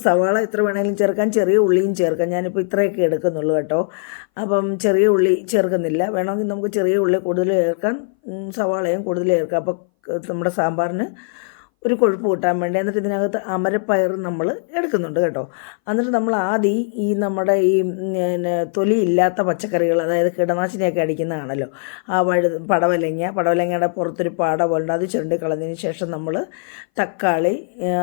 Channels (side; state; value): right; silent; 60 dB below the other